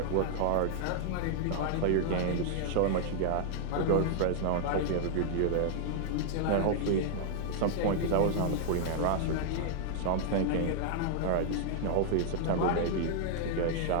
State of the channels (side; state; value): both; different; correlation -0.01